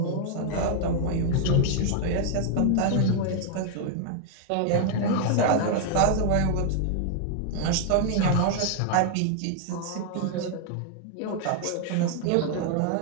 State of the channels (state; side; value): different; both; correlation 0.00